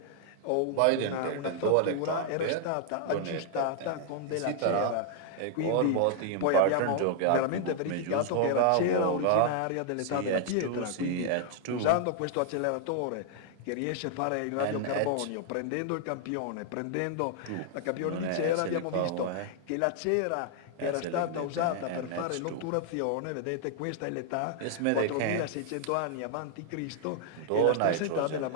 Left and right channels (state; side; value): different; both; correlation 0.00